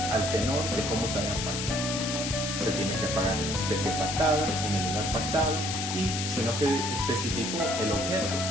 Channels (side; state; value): left; noise; hiss, 3 dB below the sound